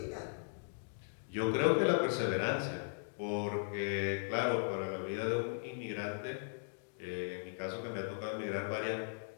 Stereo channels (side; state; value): right; silent; digital silence